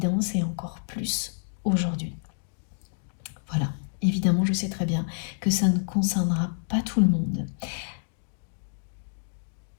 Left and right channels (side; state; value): right; silent; digital silence